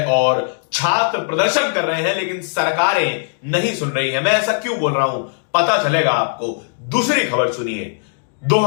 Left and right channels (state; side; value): silent; right; digital silence